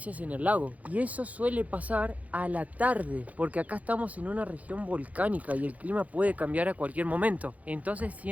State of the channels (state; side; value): late; left; 0.071 ms